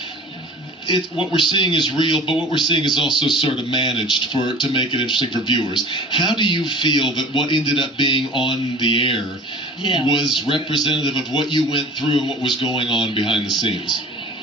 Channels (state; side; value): normal; both; correlation 0.42